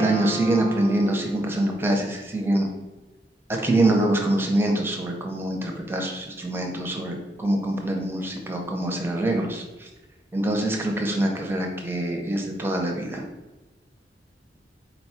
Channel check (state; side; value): normal; both; correlation 0.78